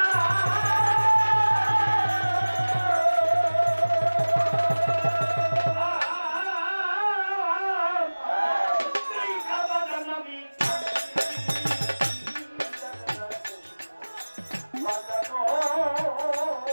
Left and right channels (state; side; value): inverted; both; correlation -1.00